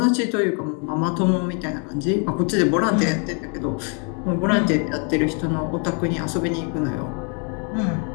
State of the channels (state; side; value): quieter; right; 38.2 dB